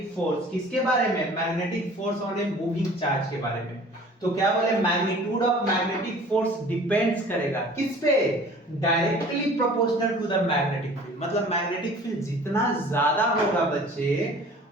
फोर्स किसके बारे में, magnetic force on a moving charge के बारे में। तो क्या बोले, magnitude of magnetic force depends करेगा किस पे, directly proportional to the magnetic field. मतलब मैग्नेटिक फील्ड जितना ज्यादा होगा बच्चे,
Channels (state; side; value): normal; both; correlation 0.47